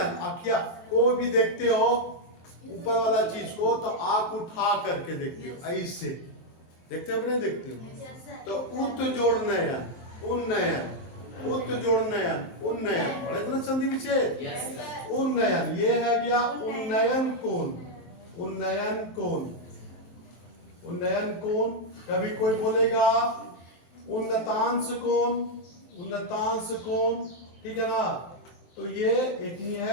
क्या कोई भी देखते हो ऊपर वाला चीज को, तो आंख उठा करके देखते हो, ऐसे देखते हो कि नहीं देखते हो? तो उत जोड़ नयन, उन्नयन, उत जोड़ नयन, उन्नयन। पढ़े तो ना संधि विच्छेद? उन्नयन, ये है गया उन्नयन कोण, उन्नयन कोण, उन्नयन कोण। कभी कोई बोलेगा उन्नतांश कोण, उन्नतांश कोण, ठीक है ना। तो ये एक ही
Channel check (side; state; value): right; late; 23 ms